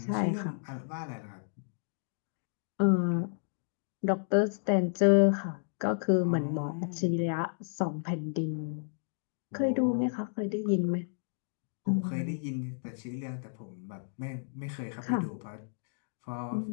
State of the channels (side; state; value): right; silent; digital silence